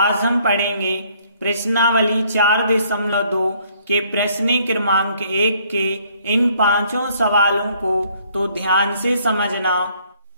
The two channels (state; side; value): inverted; both; correlation -0.64